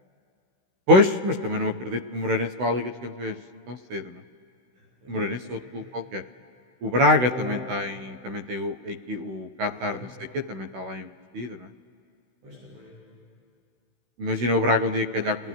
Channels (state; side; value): late; left; 16 ms